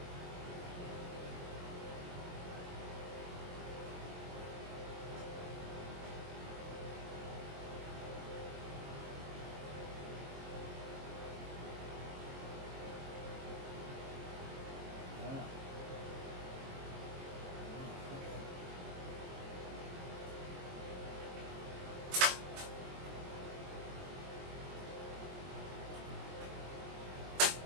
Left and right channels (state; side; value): late; left; 22 ms